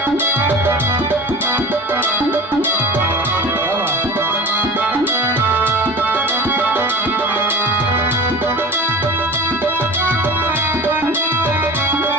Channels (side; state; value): both; normal; correlation 0.35